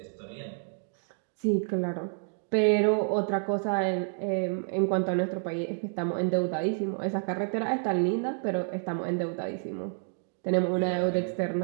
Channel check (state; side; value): silent; left; digital silence